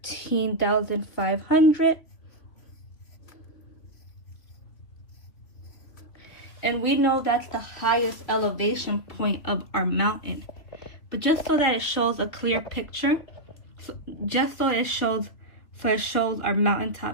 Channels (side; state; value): right; late; 2.9 ms